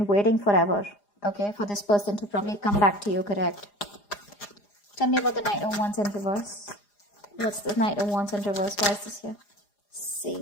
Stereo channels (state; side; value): late; right; 4.9 ms